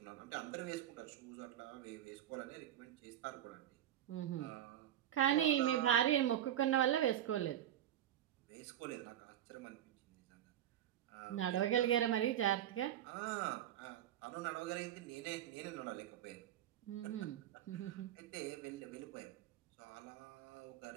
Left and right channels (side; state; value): left; quieter; 11.4 dB